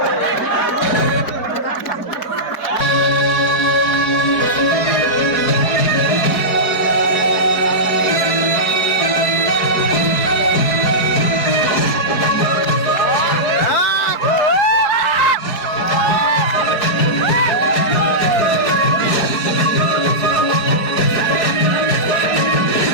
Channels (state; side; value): late; right; 4.6 ms